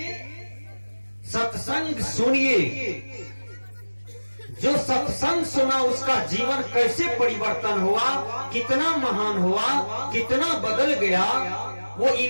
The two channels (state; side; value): inverted; both; correlation -1.00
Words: सत्संग सुनिए। जो सत्संग सुना उसका जीवन कैसे परिवर्तन हुआ, कितना महान हुआ, कितना बदल गया। वो